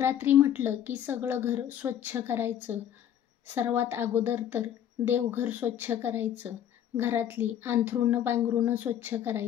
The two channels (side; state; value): right; quieter; 10.2 dB